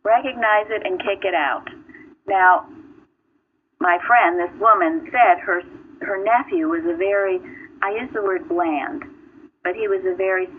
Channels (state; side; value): identical; both; correlation 1.00